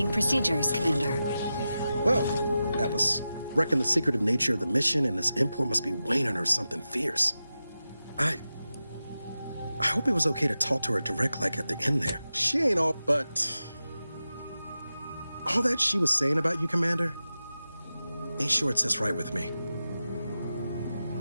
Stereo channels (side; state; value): both; inverted; correlation -0.92